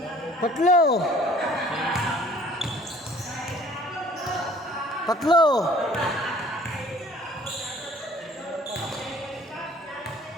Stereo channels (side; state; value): both; normal; correlation 0.53